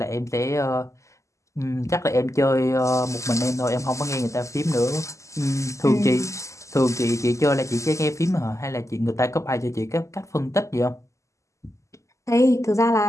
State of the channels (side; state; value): right; late; 0.15 ms